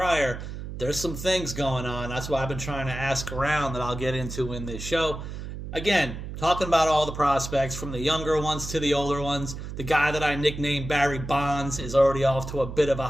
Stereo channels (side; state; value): right; noise; hum, 8 dB below the sound